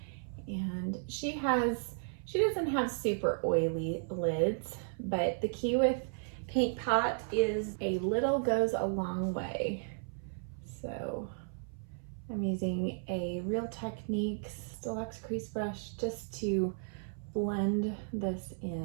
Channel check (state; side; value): silent; left; 55 dB below the other